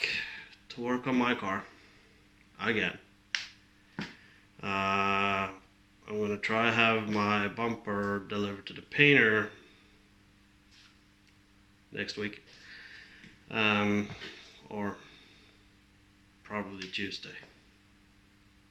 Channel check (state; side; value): identical; both; correlation 1.00